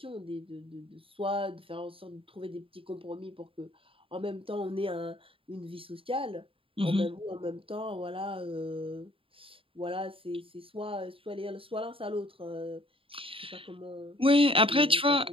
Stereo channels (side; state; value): left; late; 0.26 ms